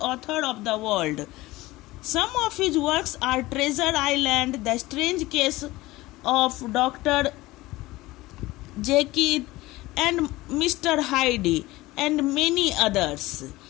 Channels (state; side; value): quieter; right; 19.1 dB